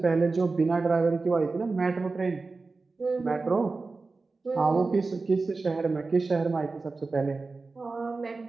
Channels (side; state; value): left; quieter; 3.9 dB